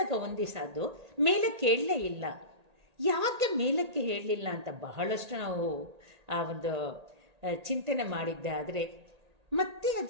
ಒಂದು ದಿವಸ ಅದು ಮೇಲಕ್ಕೆ ಹೇಳಲೇ ಇಲ್ಲ. ಯಾಕೆ ಮೇಲಕ್ಕೆ ಹೇಳಲಿಲ್ಲ ಅಂತ ಬಹಳಷ್ಟು ನಾವು ಆ ಒಂದು ಚಿಂತನೆ ಮಾಡಿದ್ದೆ. ಆದರೆ ಮತ್ತೆ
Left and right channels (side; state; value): left; late; 1.8 ms